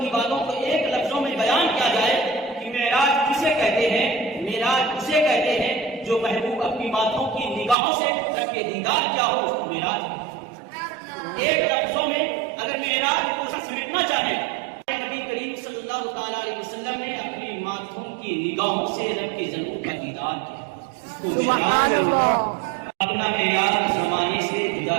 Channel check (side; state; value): left; drops out; at 7.8 s